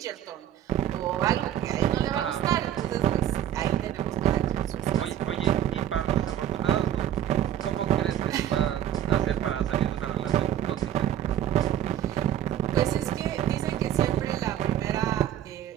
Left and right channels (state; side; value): quieter; left; 11.3 dB